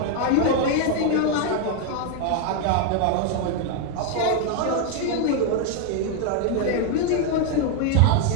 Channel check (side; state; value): both; different; correlation 0.01